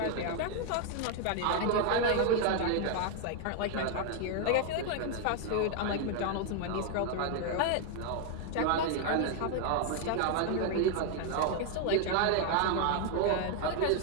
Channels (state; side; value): different; both; correlation 0.00